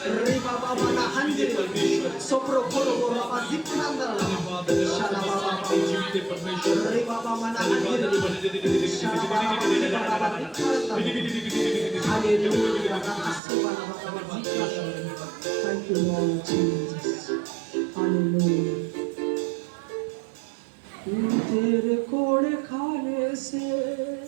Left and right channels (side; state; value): left; drops out; at 13.4 s